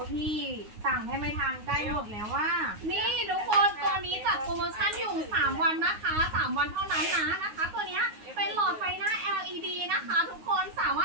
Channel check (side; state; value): left; late; 9.5 ms